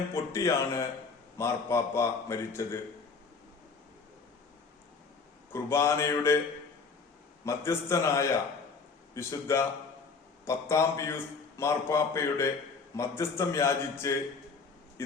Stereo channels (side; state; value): right; quieter; 4.8 dB